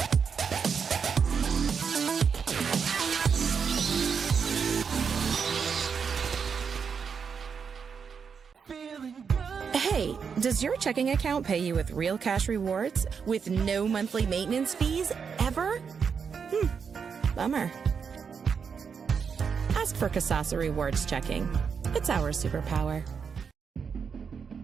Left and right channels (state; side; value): quieter; left; 6.3 dB